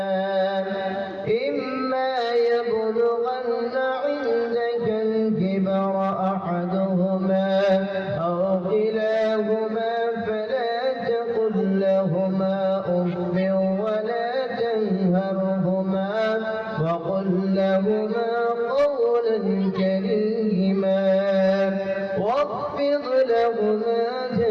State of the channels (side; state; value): both; identical; correlation 1.00